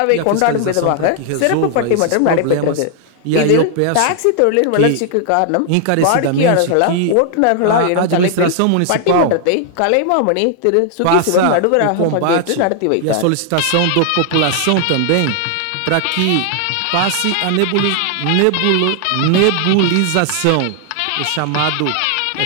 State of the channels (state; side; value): different; both; correlation 0.00